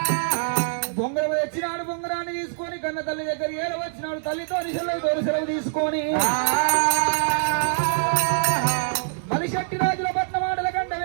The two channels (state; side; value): silent; left; digital silence